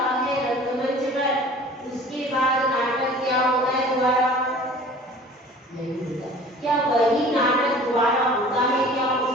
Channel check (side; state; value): both; normal; correlation 0.45